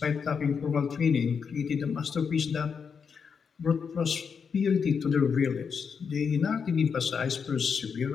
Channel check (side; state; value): right; quieter; 6.2 dB